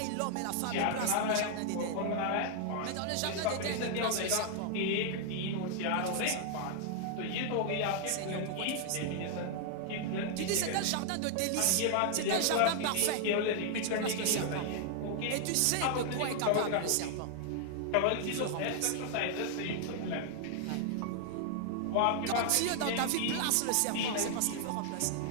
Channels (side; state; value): both; different; correlation 0.00